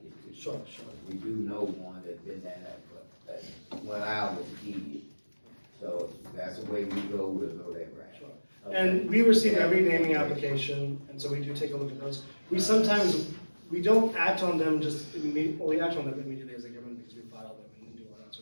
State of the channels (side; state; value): both; inverted; correlation -1.00